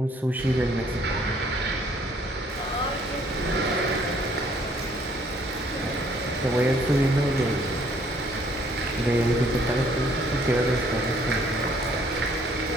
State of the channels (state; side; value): normal; both; correlation 0.63